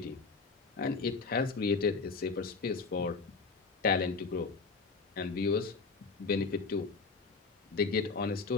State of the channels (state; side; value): quieter; right; 4.4 dB